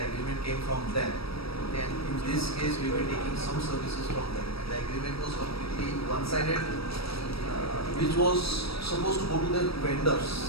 agreement came from them, and in this case, we were taking some services from them, and the agreement was completely one-sided, which was supposed to go to the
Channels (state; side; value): late; right; 0.76 ms